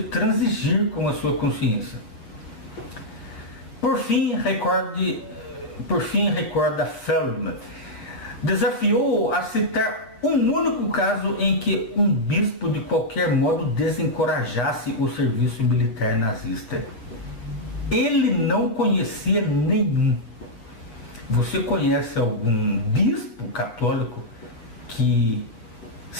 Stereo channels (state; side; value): late; right; 8.3 ms